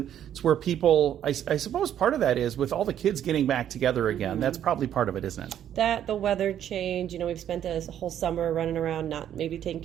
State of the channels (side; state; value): left; quieter; 10.3 dB